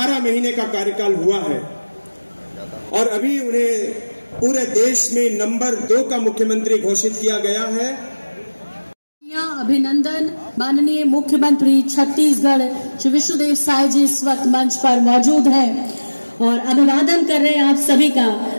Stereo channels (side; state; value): both; inverted; correlation -1.00